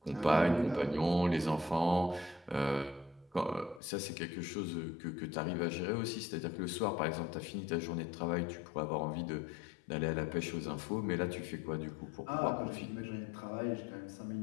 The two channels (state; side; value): drops out; right; at 3.8 s